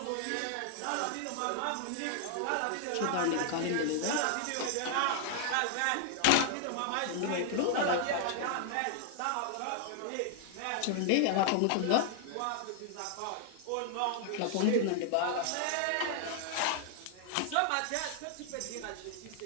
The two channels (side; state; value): both; different; correlation 0.00